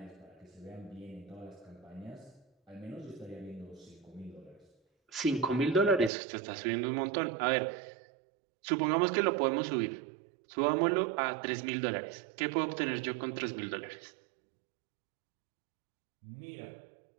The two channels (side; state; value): left; drops out; at 6.1 s